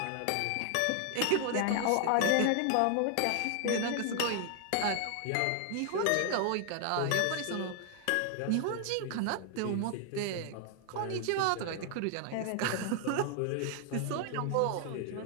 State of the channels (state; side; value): different; both; correlation 0.00